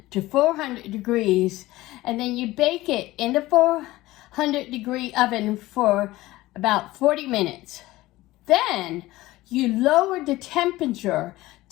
to 400 degrees, and then you bake it in the 400-degree oven for about 40 minutes. Then you lower the temperature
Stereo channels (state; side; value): quieter; right; 17.9 dB